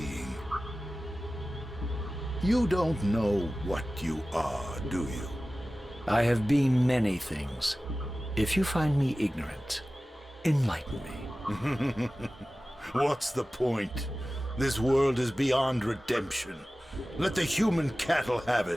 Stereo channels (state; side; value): normal; both; correlation 0.96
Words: You don't know what you are, do you? I have been many things. If you find me ignorant, enlighten me. What's the point? This world is beyond redemption. Let the human cattle have